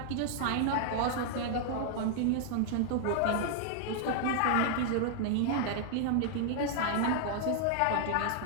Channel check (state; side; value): different; both; correlation -0.01